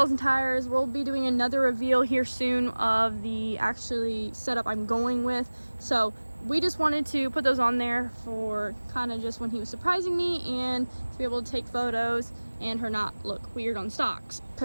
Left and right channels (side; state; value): both; inverted; correlation -1.00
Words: and tires. We'll be doing another reveal here soon of the actually setup I'm going with, so we just wanted to put those on there for kind of just when he was surprising me and to be able to take photos and her not look weird on stocks,